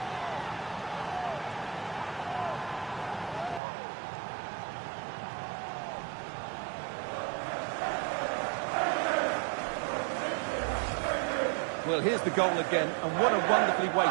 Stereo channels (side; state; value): left; drops out; at 3.6 s